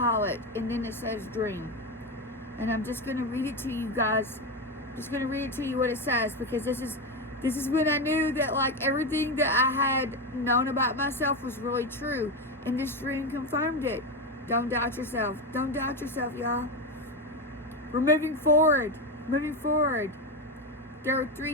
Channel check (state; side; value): normal; both; correlation 0.14